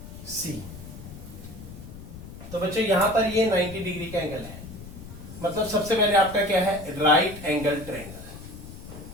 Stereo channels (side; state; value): left; noise; rumble, 13 dB below the sound